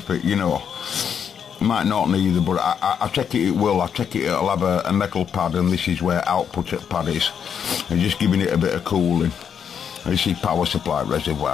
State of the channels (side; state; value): right; quieter; 7.7 dB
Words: it, you know. Might not neither, but I take it will. I take it it'll have a metal pad, and this is where output at pad is. And just giving it a bit of cooling. This is power supply